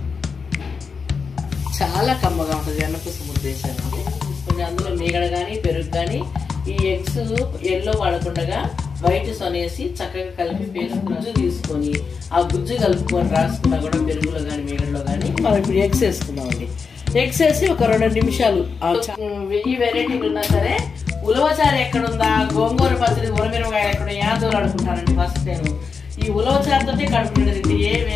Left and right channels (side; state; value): right; quieter; 5.4 dB